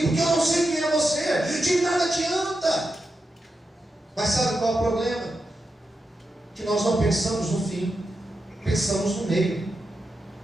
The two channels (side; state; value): both; normal; correlation 0.88